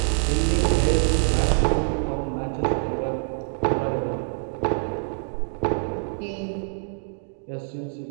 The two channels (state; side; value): silent; left; digital silence